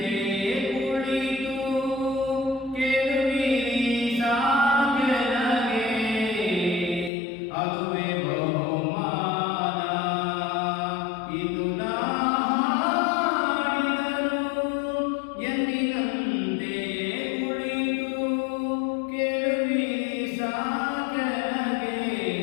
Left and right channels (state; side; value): drops out; right; at 7.1 s